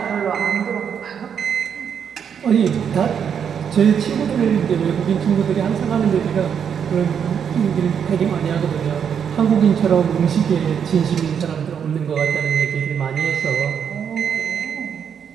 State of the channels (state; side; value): quieter; left; 7.7 dB